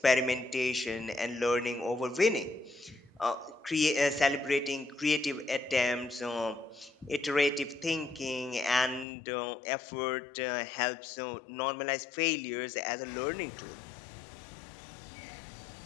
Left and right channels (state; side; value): drops out; right; at 9.1 s